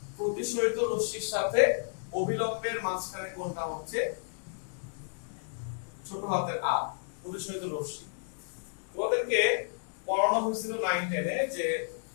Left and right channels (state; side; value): silent; right; 57 dB below the other